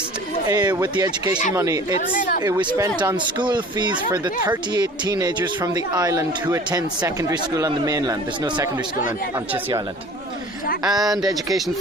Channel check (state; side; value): normal; both; correlation 0.45